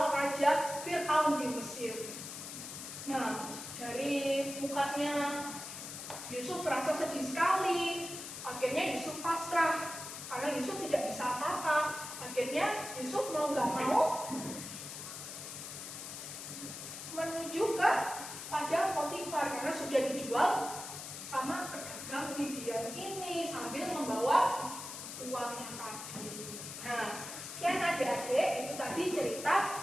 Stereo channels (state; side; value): noise; left; hiss, 9 dB below the sound